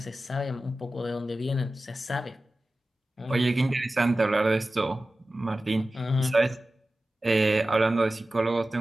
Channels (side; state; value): both; normal; correlation 0.95